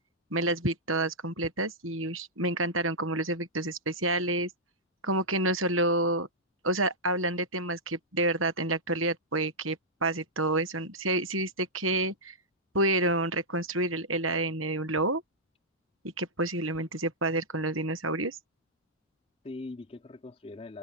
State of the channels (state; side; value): normal; both; correlation -0.10